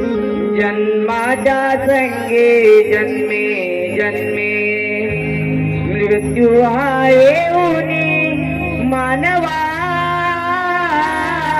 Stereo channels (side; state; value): both; identical; correlation 1.00